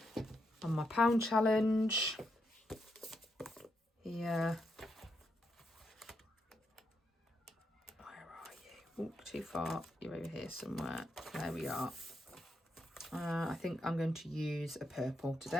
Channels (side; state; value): both; normal; correlation 0.81